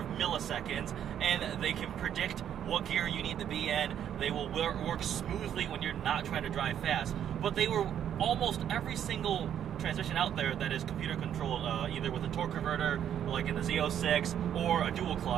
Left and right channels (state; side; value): quieter; left; 9.7 dB